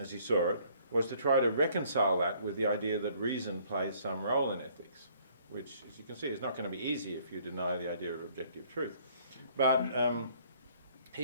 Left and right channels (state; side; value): inverted; both; correlation -0.61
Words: as he saw it, was to try to reconcile that with the idea that reason plays some role in ethics, which, as you can see, is not going to be easy if you deny the idea of objective truth. But